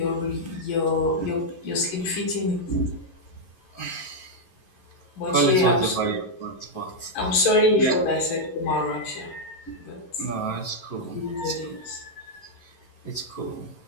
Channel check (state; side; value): late; right; 11 ms